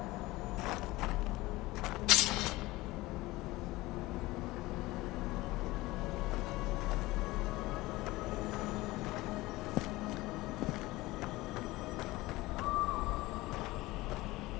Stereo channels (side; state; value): right; quieter; 19.6 dB